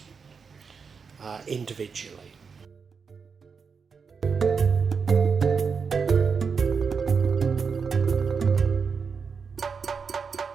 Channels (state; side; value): quieter; left; 5.6 dB